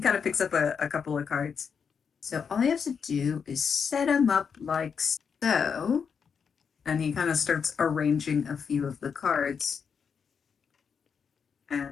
of picks up a couple of cards. So all you have to do is set them up like so. And he kind of starts arranging a few of the cards.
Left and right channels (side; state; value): right; quieter; 6.5 dB